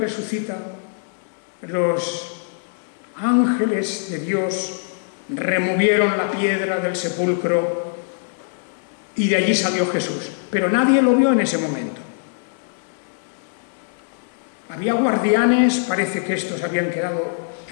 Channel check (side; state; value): right; silent; 56 dB below the other